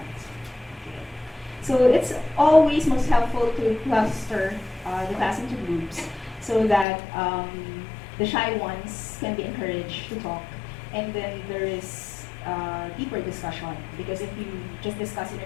Okay. So it's always most helpful to cluster the class into groups so that the shy ones can be encouraged to talk, and then there is deeper discussion. Because if you just discuss in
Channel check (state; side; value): drops out; right; at 6.9 s